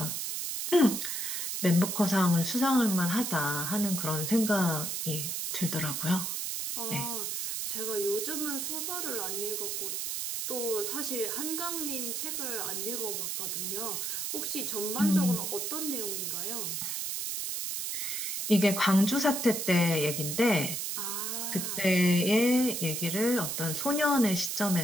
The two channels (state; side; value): noise; right; hiss, 2 dB below the sound